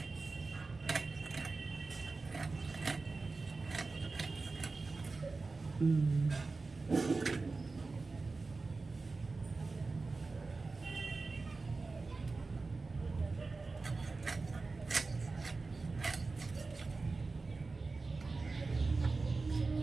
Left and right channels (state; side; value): quieter; left; 3.8 dB